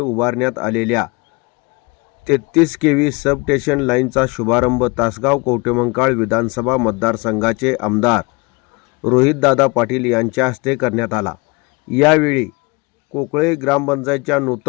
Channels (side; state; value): right; quieter; 27.0 dB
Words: आलेल्या 33 केव्ही सबस्टेशन लाईनचा शुभारंभ तासगाव कवठेमंकाळ विधानसभा मतदारसंघाचे आमदार रोहितदादा पाटील यांच्या हस्ते करण्यात आला. यावेळी कोकळे ग्रामपंचायतच्या